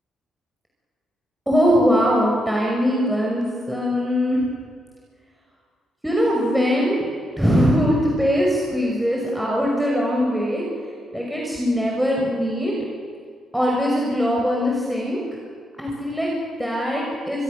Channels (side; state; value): both; normal; correlation 0.82